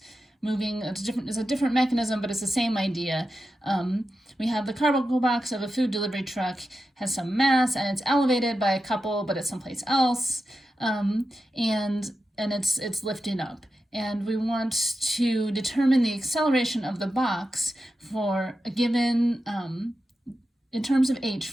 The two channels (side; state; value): both; normal; correlation 0.90